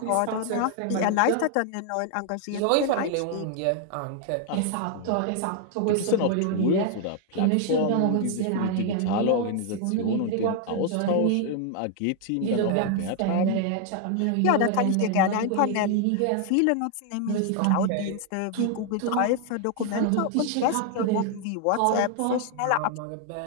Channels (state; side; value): different; both; correlation 0.00